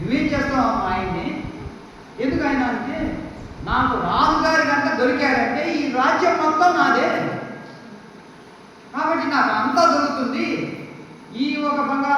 చేస్తావు ఆయన్ని? ఎందుకు ఆయన అంటే నాకు రాజుగారి కనుక దొరికారంటే ఈ రాజ్యం మొత్తం నాదే, కాబట్టి నాకు అంతా దొరుకుతుంది. ఈ ఒక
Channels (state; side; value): identical; both; correlation 1.00